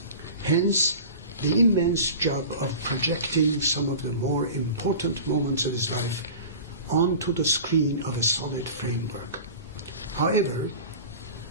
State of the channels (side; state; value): both; inverted; correlation -0.36